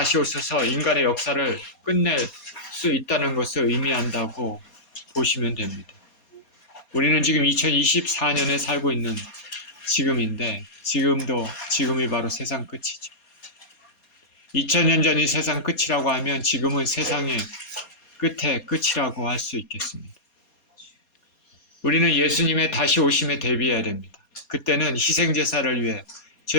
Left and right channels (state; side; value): late; right; 4.2 ms